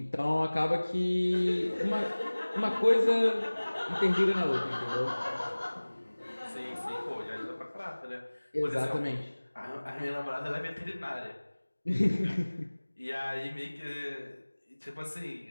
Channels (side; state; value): both; inverted; correlation -1.00